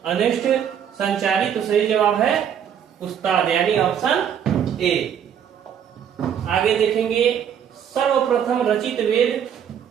अनिष्ट, संचारी। तो सही जवाब है उस्ताद यानी ऑप्शन ए। आगे देखेंगे सर्वप्रथम रचित वेद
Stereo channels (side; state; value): left; quieter; 8.7 dB